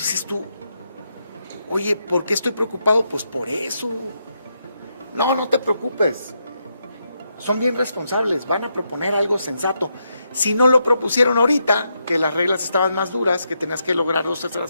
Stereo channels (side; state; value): both; inverted; correlation -0.82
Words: dices tú, oye, ¿por qué estoy preocupado? Pues por eso. No te preocupes. Son bien responsables, van a proponer algo sensato. Si no lo propusieron ahorita, que las reglas estaban más duras, que tenías que lograr